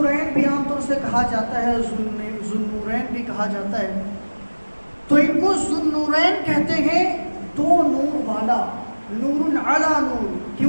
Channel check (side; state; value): both; inverted; correlation -1.00